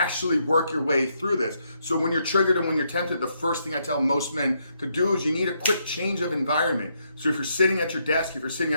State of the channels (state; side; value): inverted; both; correlation -0.76